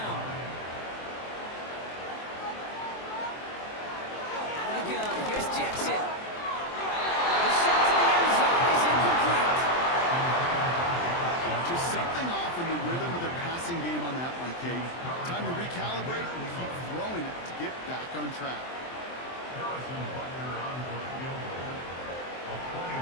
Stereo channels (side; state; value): right; late; 23 ms